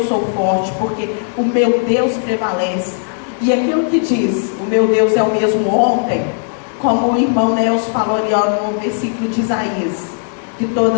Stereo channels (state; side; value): silent; right; 69 dB below the other